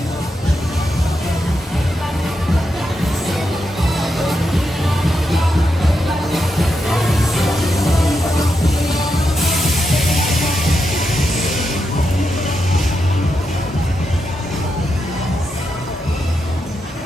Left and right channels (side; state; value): both; normal; correlation 0.85